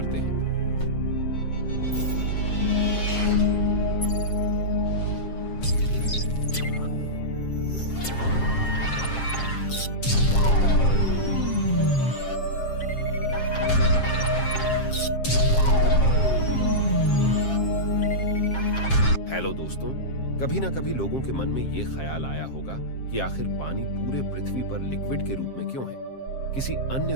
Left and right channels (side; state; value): right; late; 7.5 ms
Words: हैं। हेलो दोस्तों, कभी ना कभी लोगों के मन में ये ख्याल आया होगा कि आखिर पानी पूरे पृथ्वी पर लिक्विड के रूप में क्यों है। किसी अन्य